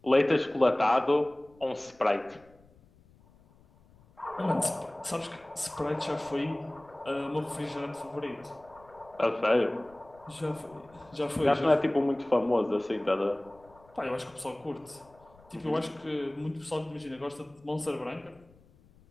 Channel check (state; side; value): noise; left; rumble, 28 dB below the sound